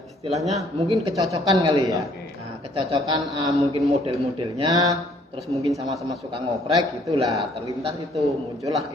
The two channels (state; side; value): normal; both; correlation 0.62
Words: istilahnya mungkin kecocokan kali ya. Oke. Nah, kecocokan mungkin model-modelnya, terus mungkin sama-sama suka ngoprek gitulah, terlintas itu muncullah